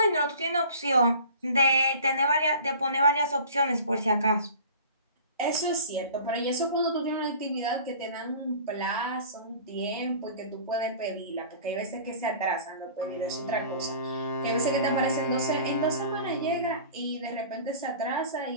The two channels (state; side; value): inverted; both; correlation -0.43